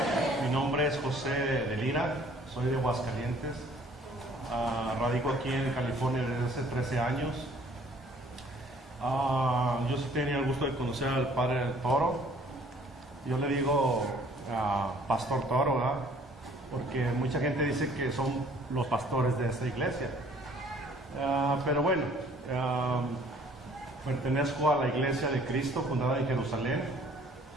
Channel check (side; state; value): both; normal; correlation 0.57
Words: Mi nombre es José de Lira, soy de Aguascalientes. Radico aquí en California desde hace 13 años. Yo sí tenía el gusto de conocer al padre Toro. Yo le digo Pastor Toro, ¿verdad? Porque mucha gente dice que son los pastores de esta iglesia. Pero bueno, pertenezco a la Iglesia de Cristo, fundada en Jerusalén,